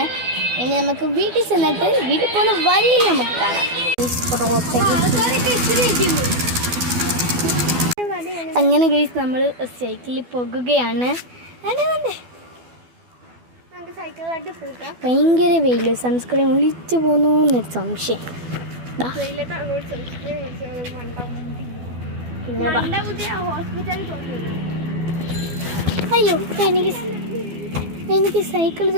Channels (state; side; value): late; left; 12 ms